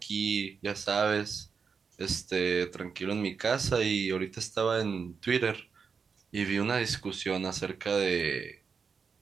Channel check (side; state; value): left; quieter; 5.7 dB